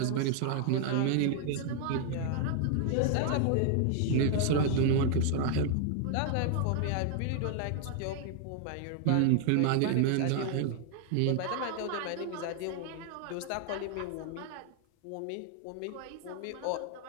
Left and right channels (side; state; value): both; different; correlation 0.00